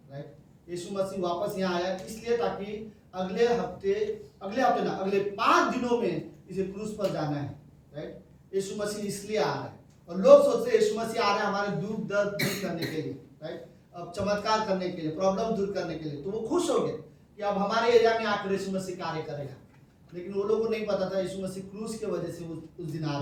राइट। यीशु मसीह वापस यहाँ आया इसलिए ताकि अगले 5 दिनों में इसे क्रूस पर जाना है, राइट। यीशु मसीह इसलिए आ रहा है, और लोग सोचते हैं यीशु मसीह आ रहा है हमारे दुख दर्द दूर करने के लिए, राइट, अब चमत्कार करने के लिए, प्रॉब्लम दूर करने के लिए। तो वो खुश हो गए कि अब हमारे एरिया में आकर यीशु मसीह कार्य करेगा, लेकिन वो लोगों को नहीं पता था यीशु मसीह क्रूस की वजह से उस दिन आ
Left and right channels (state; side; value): identical; both; correlation 1.00